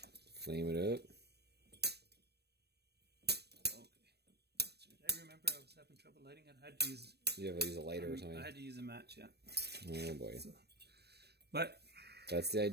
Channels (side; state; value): left; late; 0.47 ms